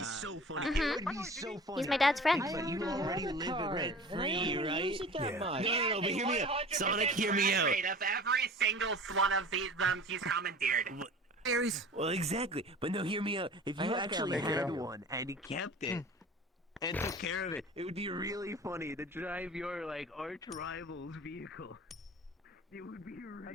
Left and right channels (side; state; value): both; normal; correlation 0.41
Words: funny. It would be so funny. He's my dad's friend. But you already live it rent free, right? No, but hear me out. Sonic, hear me out. Of every single one of these he's commandeered. Well, exactly. But no, hear me out. If you actually had one and you kept it and took care of it, it would be really funny to drive your like arch rival's vehicle. It would be